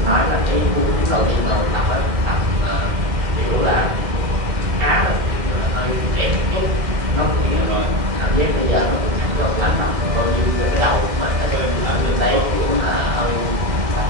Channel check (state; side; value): late; left; 2.1 ms